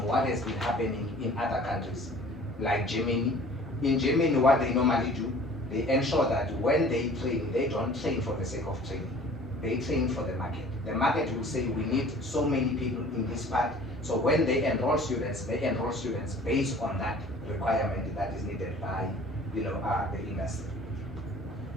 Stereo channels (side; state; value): both; normal; correlation 0.48